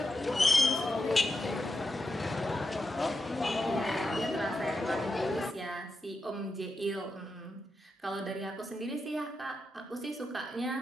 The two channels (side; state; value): both; normal; correlation 0.87